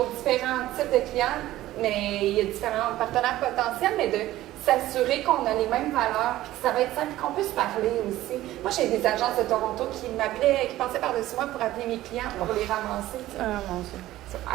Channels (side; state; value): left; quieter; 15.2 dB